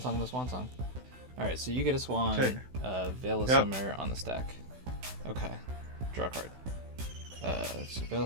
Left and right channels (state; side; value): late; left; 16 ms